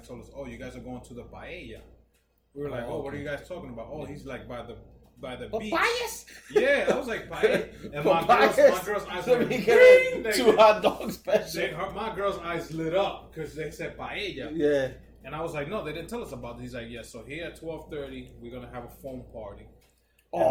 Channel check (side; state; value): both; identical; correlation 1.00